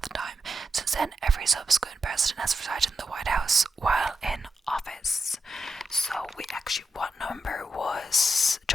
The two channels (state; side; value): normal; both; correlation 0.86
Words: the time. Since then, every subsequent president has resided in the White House while in office. So what number was